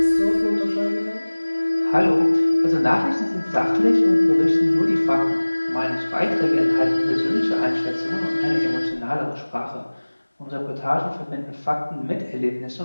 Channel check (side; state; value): both; inverted; correlation -1.00